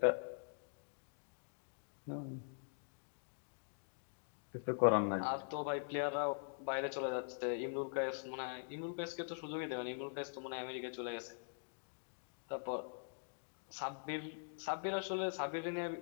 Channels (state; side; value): silent; right; digital silence